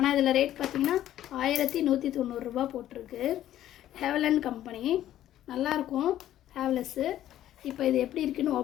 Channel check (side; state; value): right; quieter; 12.5 dB